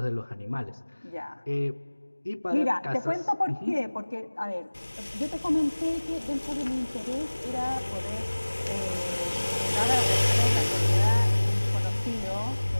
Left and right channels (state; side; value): inverted; both; correlation -1.00